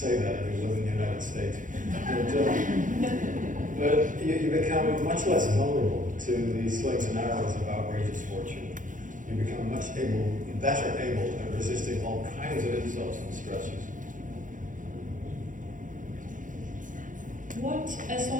that if you live in the United States. But you become much less vulnerable to the slings and arrows of outrageous fortune. You become better able at resisting all kinds of insults and stresses. So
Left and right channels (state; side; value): late; left; 0.38 ms